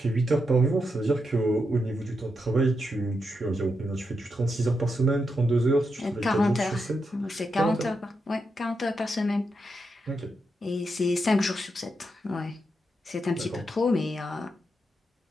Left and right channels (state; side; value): normal; both; correlation 0.84